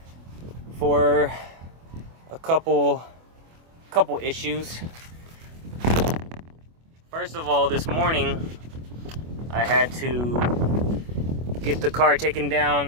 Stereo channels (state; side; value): late; left; 24 ms